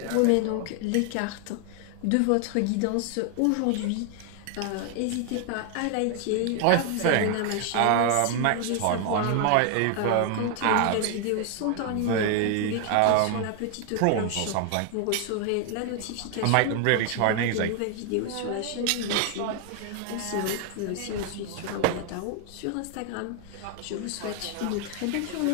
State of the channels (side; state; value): both; different; correlation 0.00